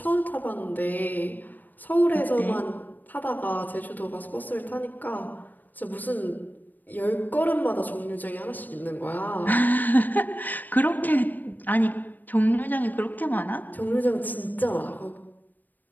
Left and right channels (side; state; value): right; late; 0.087 ms